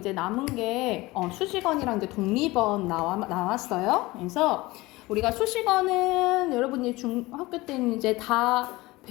남은 게, 수식어이랑 이제 독립어 나왔어요. 그래서 우리가 수식어는 여러분이 중학교 때는 이제 다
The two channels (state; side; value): quieter; right; 20.6 dB